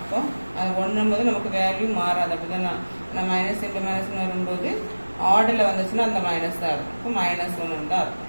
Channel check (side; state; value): both; inverted; correlation -1.00